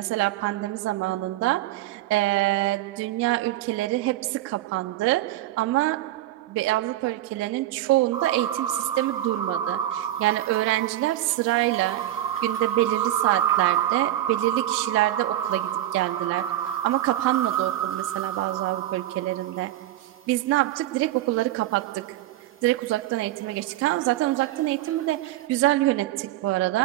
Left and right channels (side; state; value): left; quieter; 14.1 dB